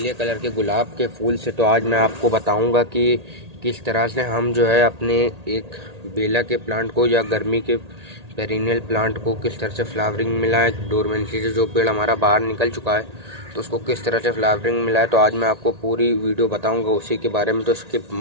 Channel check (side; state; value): left; late; 1.8 ms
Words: कलर के गुलाब के फूल से। तो आज मैं आपको बताऊँगा कि किस तरह से हम जो है अपने एक बेला के प्लांट को या गर्मी के पेरिनियल प्लांट को किस तरह से फ्लावरिंग मिला है। डोरमेंसी से जो पेड़ हमारा बाहर निकल चुका है तो उसको किस तरह से फ्लावरिंग मिला है, तो आज मैं आपको पूरी वीडियो बताऊँगा उसी के बारे में। तो स्किप